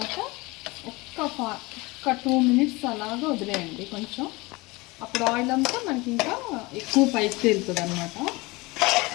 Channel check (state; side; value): quieter; right; 23.4 dB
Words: ఒక్క 2 మినిట్స్ అలాగా వదిలేయండి కొంచెం. అప్పుడు ఆయిల్ అంతా మనకి ఇంకా ఎక్కువ పైకి తేలుతుంది అన్నమాట.